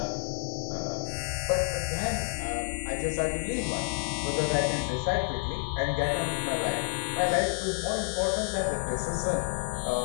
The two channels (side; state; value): right; silent; digital silence